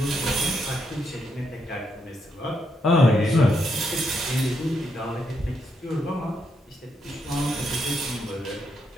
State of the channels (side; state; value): both; normal; correlation 0.79